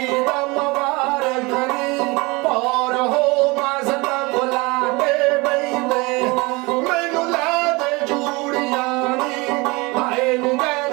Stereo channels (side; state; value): left; quieter; 25.2 dB